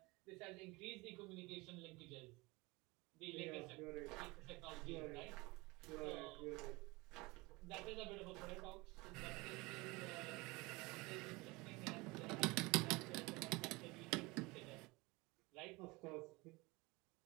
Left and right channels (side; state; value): left; quieter; 23.9 dB